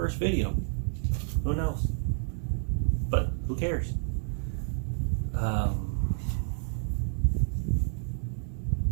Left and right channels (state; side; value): silent; left; 58 dB below the other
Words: video. Who knows? But who cares?